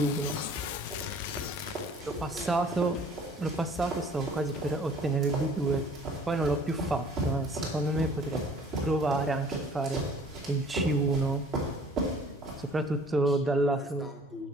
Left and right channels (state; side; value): normal; both; correlation 0.52